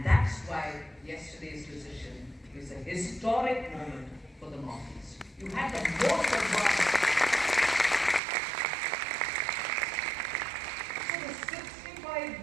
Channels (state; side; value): drops out; left; at 8.2 s